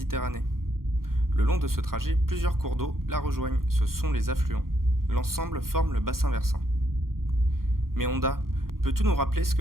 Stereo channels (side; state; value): left; late; 0.92 ms